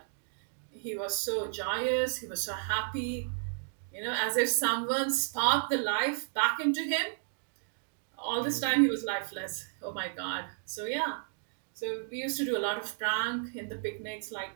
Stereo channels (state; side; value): silent; left; digital silence